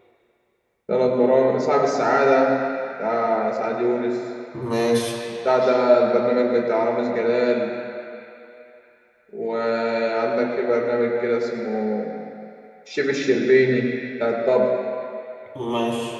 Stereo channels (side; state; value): both; identical; correlation 1.00